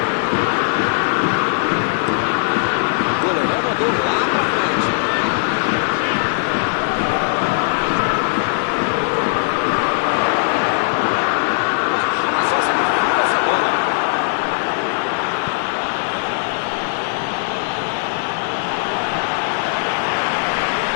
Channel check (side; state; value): right; silent; digital silence